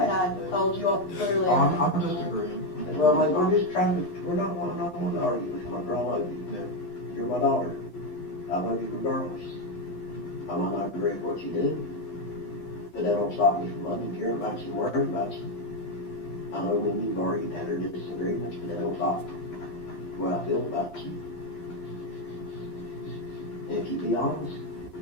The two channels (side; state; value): right; late; 11 ms